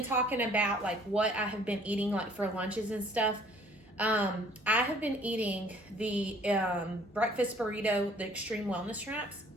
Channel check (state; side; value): normal; both; correlation 0.57